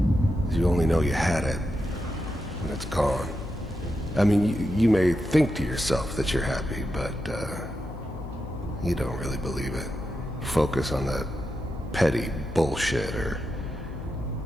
you only know you had it when it's gone. I mean, you may think to yourself that you're happy, but you don't really believe it. Focus on that petty bullshit or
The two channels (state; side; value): noise; left; hum, 12 dB below the sound